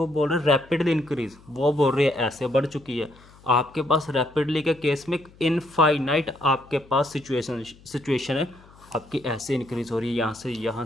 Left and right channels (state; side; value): noise; left; hum, 25 dB below the sound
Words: बोल रहे हैं रैपिडली इंक्रीज, वो बोल रहे हैं ऐसे बढ़ चुकी है। आपके पास रैपिडली के केस में इनफाइनाइट आपके पास सिचुएशन है, आपकी ऐसे इंक्रीज हो रही है, यहाँ से यहाँ